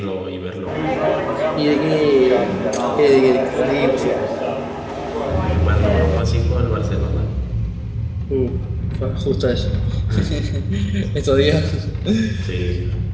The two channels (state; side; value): identical; both; correlation 1.00